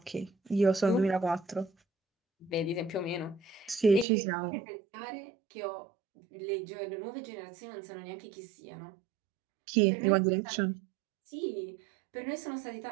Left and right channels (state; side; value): drops out; left; at 4.0 s